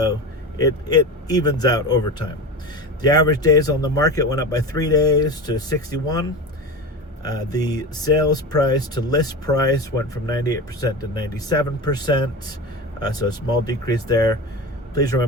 it evens out over time. The average days on the market went up by 3 days to 61. The sales price to list price went from 98% to 97%, so a small decrease there. Please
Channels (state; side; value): normal; both; correlation 0.27